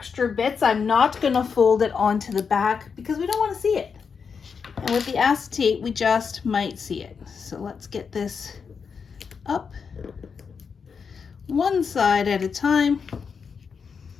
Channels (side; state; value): right; quieter; 5.9 dB